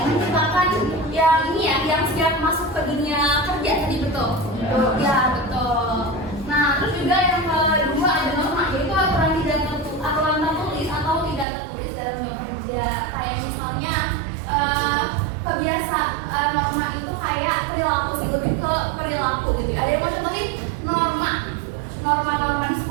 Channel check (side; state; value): left; drops out; at 11.5 s